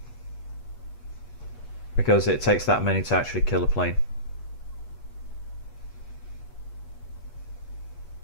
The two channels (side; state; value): right; late; 8.3 ms